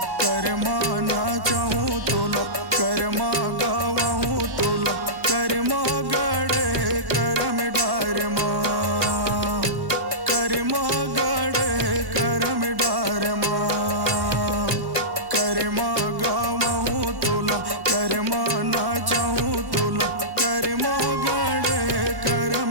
करमा ना चाहूँ तोला, करमा गवाहूँ तोला, करमा गड़े करम डार माँ, करमा गड़े करम डार माँ, करमा गवाहूँ तोला, करमा ना चाहूँ तोला, करमा गड़े करम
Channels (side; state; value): left; late; 1.1 ms